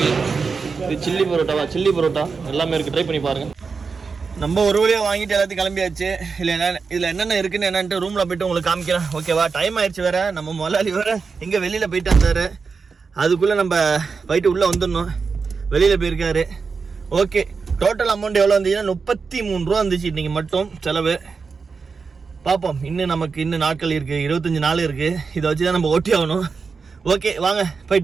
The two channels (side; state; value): left; quieter; 5.0 dB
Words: இது சில்லி பரோட்டாவா, சில்லி பரோட்டா எல்லாமே இருக்குது. ட்ரை பண்ணி பாருங்கள். நம்ம ஒரு வழியாக வாங்கிட்டு எல்லாத்தையும் கிளம்பியாச்சு. இதில் என்னென்ன இருக்குன்னு என்னன்ட்டு ரூமில் போய்ட்டு உங்களுக்கு காமிக்கிறேன். ஓகேவா? டைம் ஆயிடுச்சு வேறு. நம்ம முதலாளி வேறு எங்கே வெளியில் போயிட்டு வந்தார். அதுக்குள்ளே நம்ம போயிட்டு உள்ளே வந்துடணும். வெளியில் போயிருக்காரு. ஓகே, டோட்டல் அமௌண்ட் எவ்வளோ வந்துச்சுன்னா 33 ரூபா வந்துச்சு இன்றைக்கி மட்டும் செலவு. பார்ப்போம், இன்னும் நாட்கள் இருக்குது, 25 நாள் இருக்குது. இதை வச்சு தான் நம்ம ஓட்டி ஆகணும். ஓகே, வாங்க